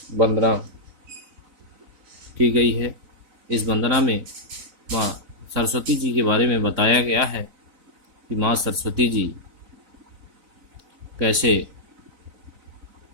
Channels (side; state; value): left; late; 3.9 ms